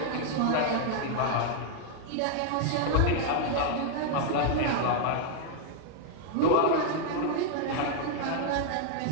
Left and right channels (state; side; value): different; both; correlation 0.00